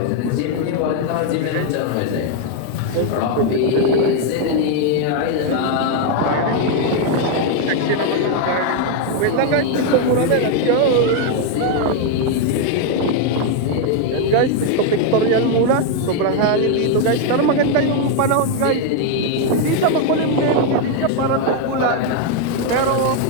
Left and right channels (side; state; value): both; different; correlation 0.01